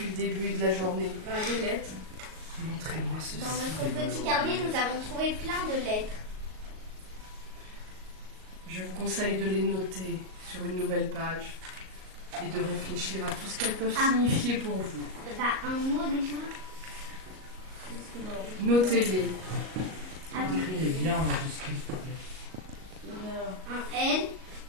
le début de la journée? Des lettres. Montrez-moi ceci. Dans notre petit carnet, nous avons trouvé plein de lettres. Je vous conseille de les noter sur une nouvelle page et de réfléchir à tout ce qu'elles peuvent signifier pour vous. Bah, un mot déjà. Notez-les. Attends, Écrivez bien en majuscule, s'il te plaît. un L.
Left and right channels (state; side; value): late; left; 38 ms